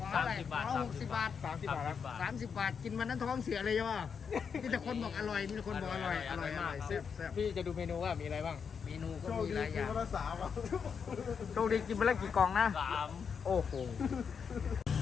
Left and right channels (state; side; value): quieter; right; 6.4 dB